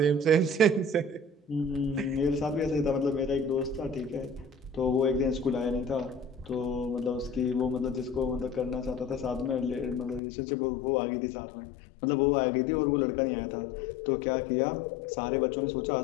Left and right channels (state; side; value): drops out; right; at 10.2 s